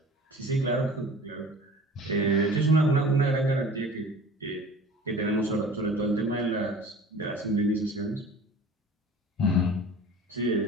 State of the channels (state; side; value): normal; both; correlation 0.43